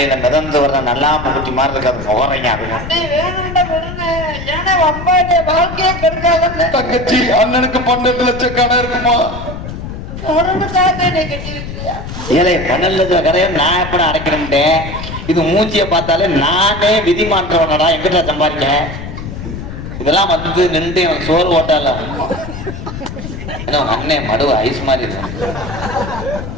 மிதந்து வர்ற நல்லா குட்டி மாதிரி இருக்காது முகரைங்க. அது தங்கச்சி அண்ணனுக்கு 12 லட்சம் கடை இருக்குமா? ஏழை 12 லட்சம் கடையை நான் எப்படி அடைக்கிறேன்? இது மூச்சியை பார்த்தாலே நானே விதி மாற்றவனடா. எங்கிட்ட சம்பாதிக்க இதெல்லாம் வந்து நின்று எனக்கு சோறு ஓட்டால அண்ணன் மடுவு ஐஸ் மாதிரி இருக்கு.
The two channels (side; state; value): left; noise; rumble, 9 dB below the sound